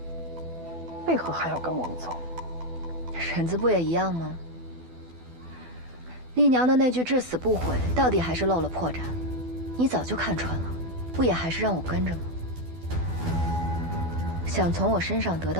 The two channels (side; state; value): left; late; 12 ms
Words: 为何还要跟我们走？婶子不也一样吗？丽娘的那句至死不悔，到底还是露了破绽。你早就看穿了，不也还是让我跟着吗？想从我身上得